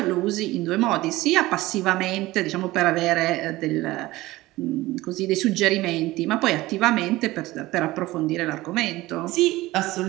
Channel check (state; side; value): quieter; left; 18.4 dB